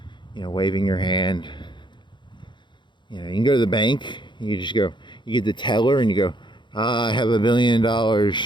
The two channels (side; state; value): right; late; 0.23 ms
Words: waving your hand. You can go to the bank. You get the teller and you go, I have $1 billion